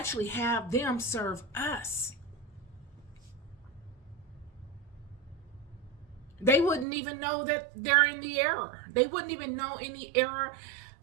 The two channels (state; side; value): drops out; left; at 6.9 s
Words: have them serve us. They wouldn't even know that they're in the error. They wouldn't even know any error